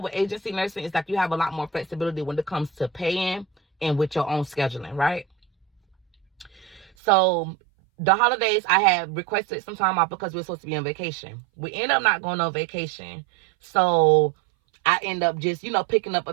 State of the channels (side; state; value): left; drops out; at 6.9 s